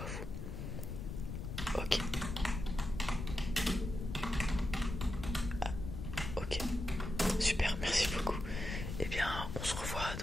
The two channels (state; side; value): noise; left; rumble, 5 dB below the sound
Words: vous. Ok. Ok, super, merci beaucoup. Et bien on se revoit